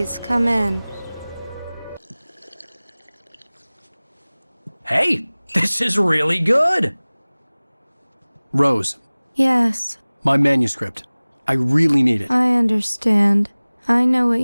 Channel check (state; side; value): inverted; both; correlation -1.00